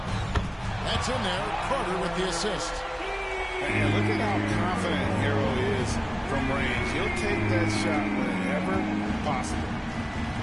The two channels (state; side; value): identical; both; correlation 1.00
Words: That's in there. Carter with the assist. And look at how confident Hero is from range. He'll take that shot whenever possible.